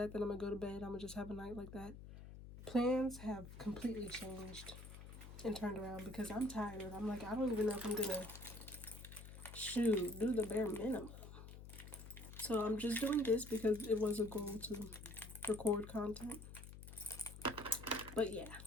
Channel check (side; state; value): left; noise; hum, 13 dB below the sound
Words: then I'm gonna go to bed. I'm gonna just have a night like that. Plans have completely changed and turned around because I'm tired. I'm like, I don't even know if I'm gonna do the bare minimum. So I'm just doing this because it was a goal to record content. But yeah,